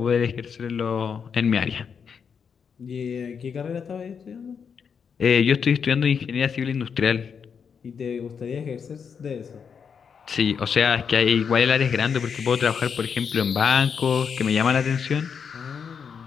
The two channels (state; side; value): quieter; right; 6.6 dB